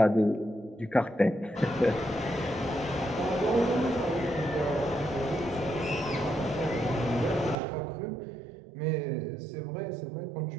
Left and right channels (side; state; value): left; drops out; at 7.6 s